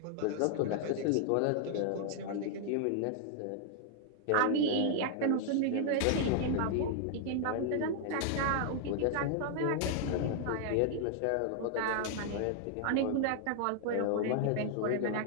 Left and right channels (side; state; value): both; different; correlation -0.01